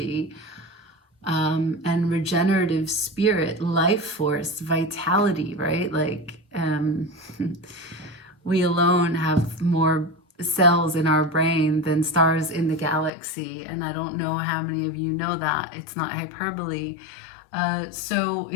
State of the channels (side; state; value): right; drops out; at 13.1 s